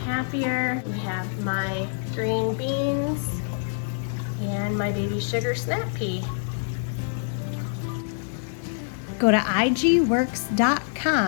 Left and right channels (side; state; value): right; silent; digital silence